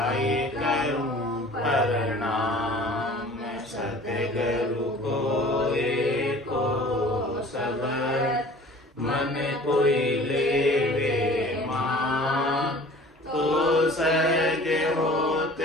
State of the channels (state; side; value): normal; both; correlation 0.47